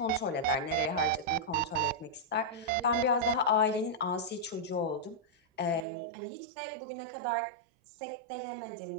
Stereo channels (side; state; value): left; drops out; at 5.9 s